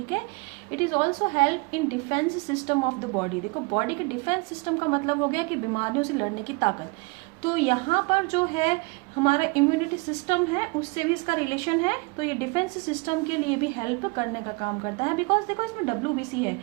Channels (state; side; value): quieter; left; 28.8 dB